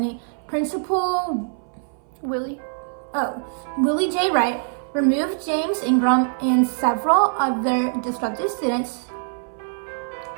Principal Willie J. Wright removed James Ingrahm and several other disruptive students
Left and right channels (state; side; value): silent; left; 60 dB below the other